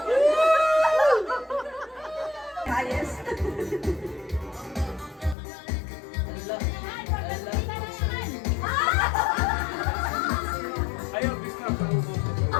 Ayos. Ayaw, bisna sa ubos.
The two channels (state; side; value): drops out; right; at 5.4 s